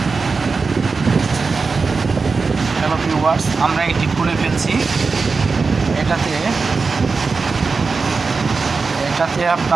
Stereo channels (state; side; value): quieter; left; 4.5 dB